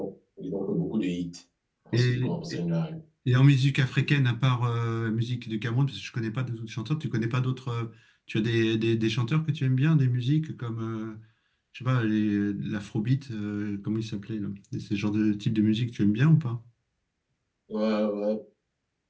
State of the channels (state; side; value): identical; both; correlation 1.00